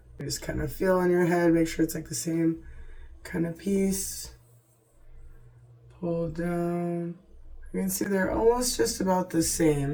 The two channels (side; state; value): both; identical; correlation 1.00